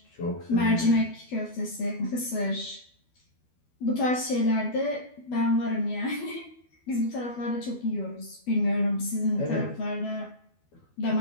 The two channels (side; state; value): right; late; 12 ms